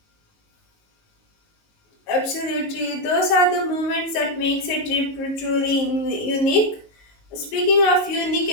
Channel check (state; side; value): late; right; 19 ms